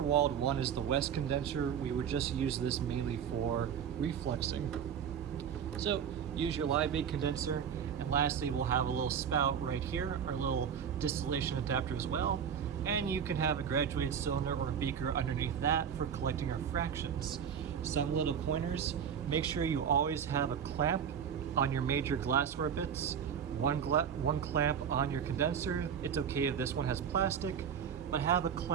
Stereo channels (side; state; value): left; quieter; 7.9 dB